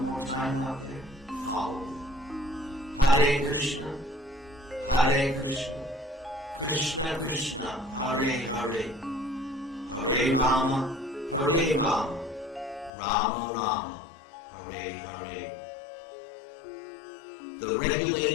more time out there? Follow me. Hare Krishna, Hare Krishna, Krishna Krishna, Hare Hare, Hare Rama, Hare Rama, Rama Rama, Hare Hare. The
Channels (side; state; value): right; drops out; at 12.9 s